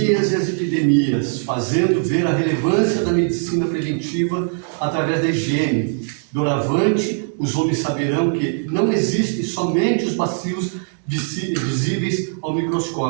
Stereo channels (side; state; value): left; silent; 64 dB below the other